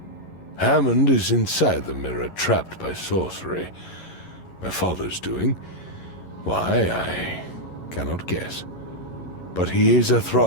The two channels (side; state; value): right; late; 11 ms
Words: Hammond is inside the mirror, trapped by sorcery. My father's doing? Why, I cannot guess. But he is a